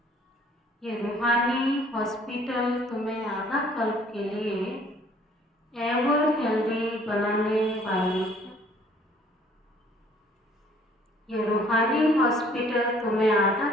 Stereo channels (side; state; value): both; normal; correlation 0.58